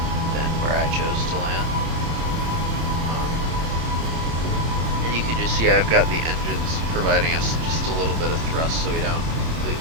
than where I chose to land. And you can just see I've got the engines providing us just a little bit of thrust so we don't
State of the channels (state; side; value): late; left; 26 ms